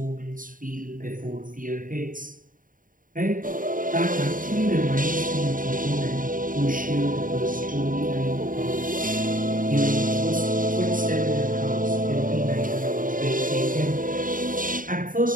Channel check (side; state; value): left; late; 0.39 ms